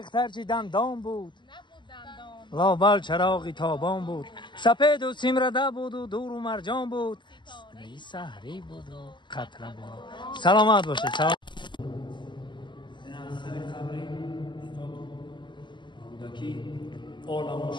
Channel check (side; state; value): right; late; 0.22 ms